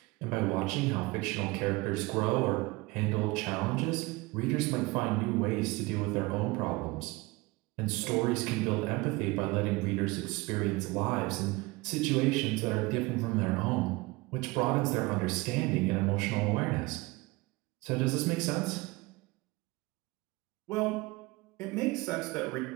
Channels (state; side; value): quieter; left; 23.1 dB